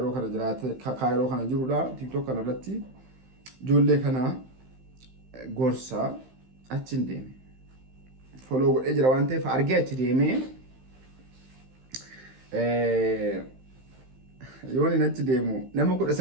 kana jiraate kaayiroo kana jirudha. TikTok kanarratti ijoollee kana gorsaa achiin deeme. Foloo godhee jira waan ta'eef argee achi deemee yoon inni achi deemu nama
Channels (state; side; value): late; left; 15 ms